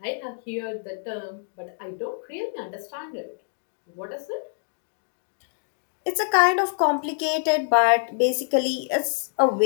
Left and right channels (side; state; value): right; silent; digital silence